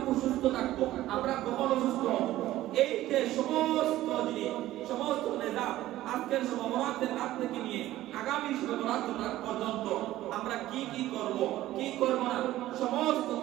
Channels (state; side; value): quieter; left; 15.0 dB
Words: সুস্থ থাকবো আমরা কখন অসুস্থ হব এই যে সমস্ত জিনিস সমস্ত নিজাম আজকের শবে বরাতের রাত থেকে নিয়ে আগামী শবে বরাতের রাত পর্যন্ত আমরা কি কি করব কি করব না সমস্ত